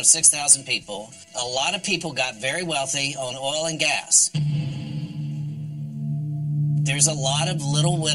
6,000 people. A lot of people got very wealthy on oil and gas. There's a lot of little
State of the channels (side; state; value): both; identical; correlation 1.00